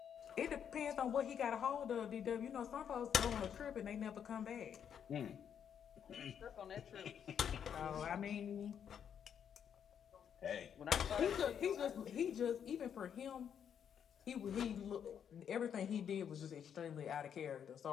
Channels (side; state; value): right; quieter; 8.3 dB